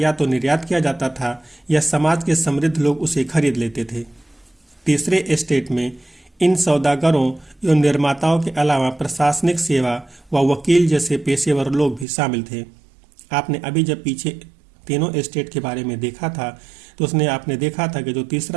तो निर्यात किया जाता था या समाज के समृद्ध लोग उसे खरीद लेते थे। तीसरे स्टेट में इन सौदागरों एवं निर्माताओं के अलावा प्रशासनिक सेवा व वकील जैसे पेशेवर लोग भी शामिल थे। आपने अभी जब पीछे तीनों स्टेट के बारे में देखा था तो उसने आपने देखा था कि जो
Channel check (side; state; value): left; drops out; at 12.1 s